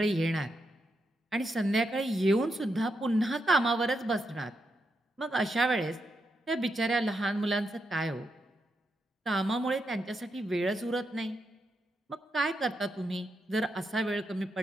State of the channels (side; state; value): both; normal; correlation 0.83